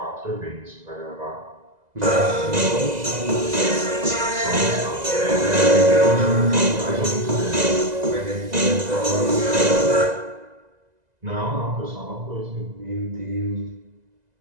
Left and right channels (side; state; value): left; late; 2.0 ms